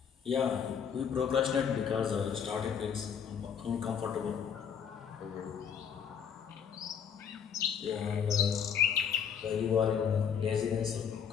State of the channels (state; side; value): quieter; right; 7.5 dB